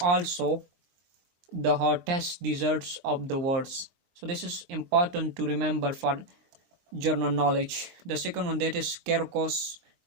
also the hottest deserts of the world. So this is important to remember for general knowledge. The second one, that is Caircross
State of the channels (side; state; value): left; late; 23 ms